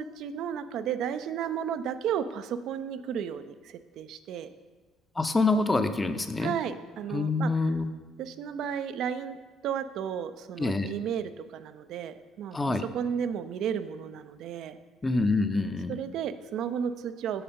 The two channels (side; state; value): both; normal; correlation 0.68